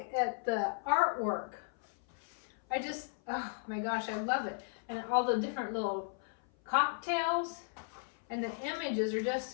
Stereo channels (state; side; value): silent; right; 54 dB below the other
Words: at the artwork. Oh my gosh, I love it. And all the different little cocktails, and the images are